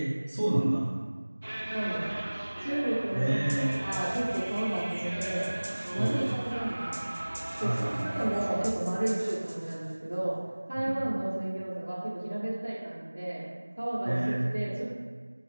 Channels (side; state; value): both; inverted; correlation -1.00